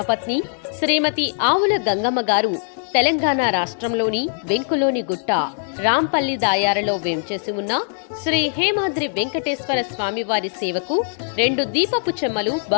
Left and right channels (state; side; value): silent; right; digital silence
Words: శ్రీమతి ఆవుల గంగమ్మ గారు తెలంగాణ రాష్ట్రంలోని వెంకులోని గుట్ట రాంపల్లి దాయారలో వేంచేసి ఉన్న శ్రీ హేమాద్రి వెంకటేశ్వర స్వామివారి సేవకు 2 దీపపు చెమ్మలు